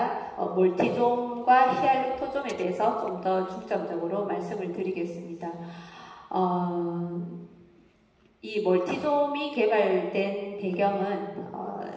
멀티좀과 히알루토존에 대해서 좀 더 중점적으로 말씀을 드리겠습니다. 이 멀티좀이 개발된 배경은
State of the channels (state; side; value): identical; both; correlation 1.00